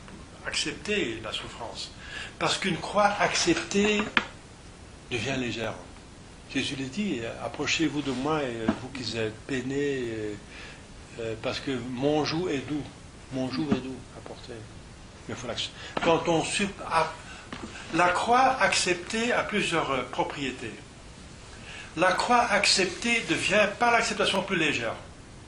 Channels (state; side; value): identical; both; correlation 1.00